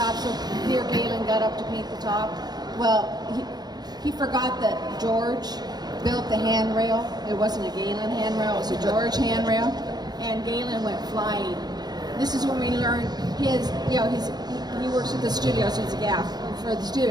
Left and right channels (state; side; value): late; left; 0.20 ms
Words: so dear Galen got up to paint the top. Well, he forgot that George built the handrail. It wasn't a Galen handrail, it was a George handrail. And Galen went flying. This is when we learned he works at the studio, so it's a gaff for the